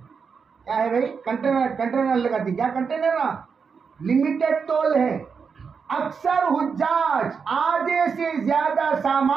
کیا ہے بھائی؟ کنٹینر لگاتی. کیا کنٹینر نا؟ لمیٹڈ تول ہے. اکثر حجاج آدھے سے زیادہ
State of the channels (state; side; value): quieter; left; 5.8 dB